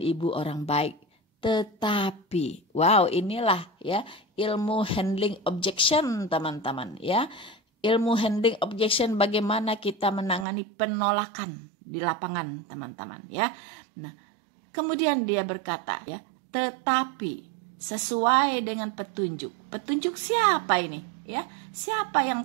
Ibu orang baik. Tetapi, wow, inilah, ya, ilmu handling objection, teman-teman, ya. Ilmu handling objection, bagaimana kita menangani penolakan di lapangan, teman-teman, ya. Nah, kemudian dia berkata, ya, tetapi sesuai dengan petunjuk. Petunjuk siapa ini? Ya, siapa yang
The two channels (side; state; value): left; drops out; at 10.5 s